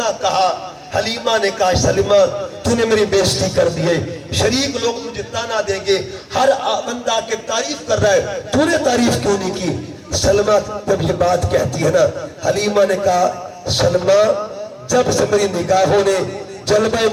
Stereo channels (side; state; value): both; identical; correlation 1.00